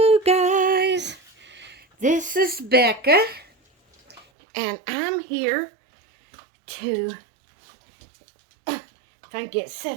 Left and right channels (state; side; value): drops out; left; at 4.2 s